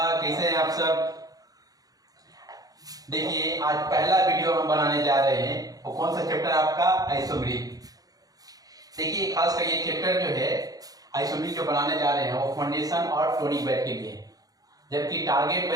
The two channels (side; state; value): left; late; 0.18 ms